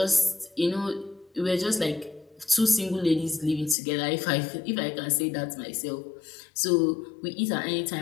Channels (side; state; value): right; drops out; at 3.8 s